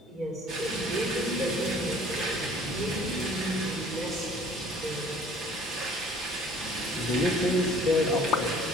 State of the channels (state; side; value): normal; both; correlation 0.53